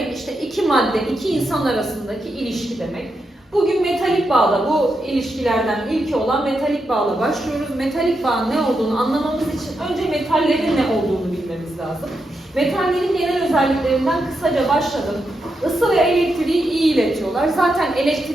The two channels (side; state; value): both; normal; correlation 0.85